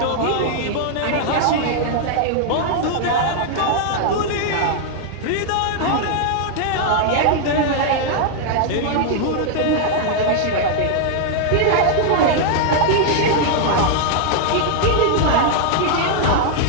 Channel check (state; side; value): different; both; correlation 0.00